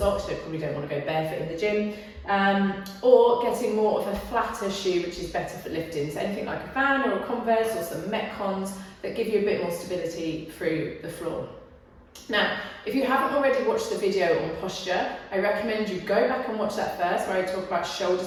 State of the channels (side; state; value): both; identical; correlation 1.00